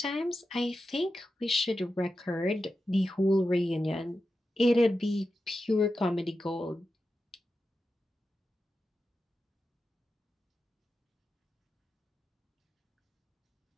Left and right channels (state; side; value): normal; both; correlation 0.91